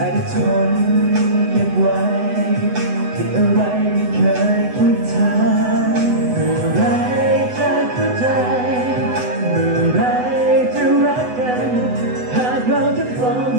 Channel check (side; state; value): left; late; 8.0 ms